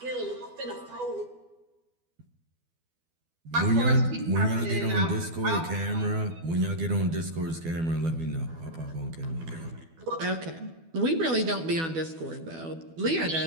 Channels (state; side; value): late; left; 12 ms